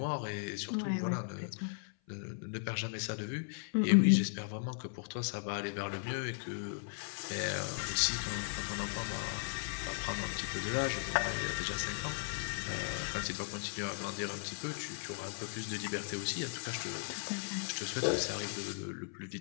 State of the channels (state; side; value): silent; right; 53 dB below the other